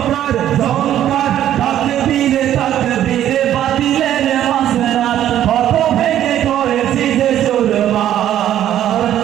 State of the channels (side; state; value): left; quieter; 11.5 dB